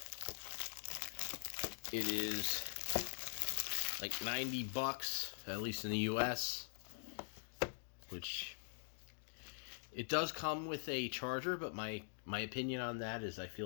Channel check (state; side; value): silent; right; digital silence